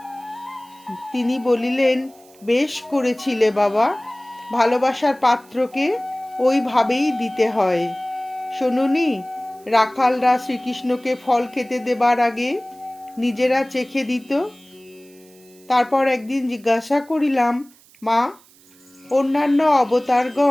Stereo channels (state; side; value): noise; right; hiss, 27 dB below the sound